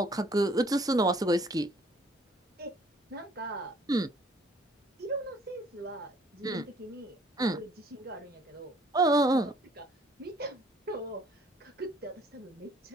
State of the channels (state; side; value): normal; both; correlation 0.59